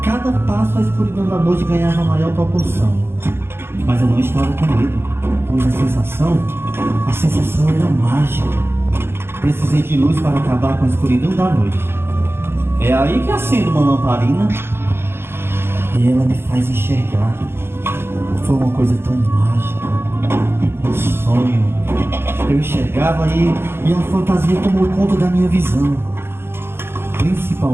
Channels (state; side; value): late; left; 0.11 ms